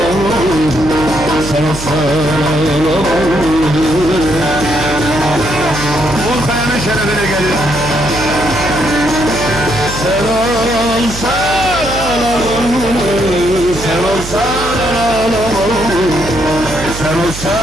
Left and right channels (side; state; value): right; noise; hum, 10 dB below the sound